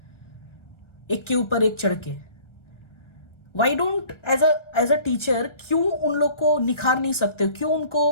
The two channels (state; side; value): late; right; 1.3 ms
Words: एक के ऊपर एक चढ़ के? Why don't as a teacher क्यों उन लोग को निखार नहीं सकते हो, क्यों